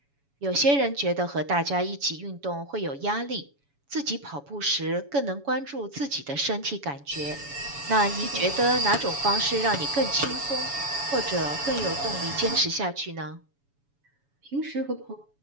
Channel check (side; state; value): left; late; 7.1 ms